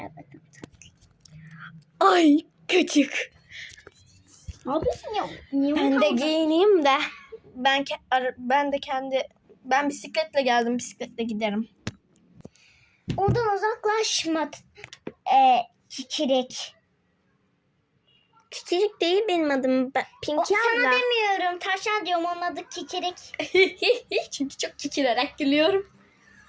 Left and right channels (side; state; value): both; identical; correlation 1.00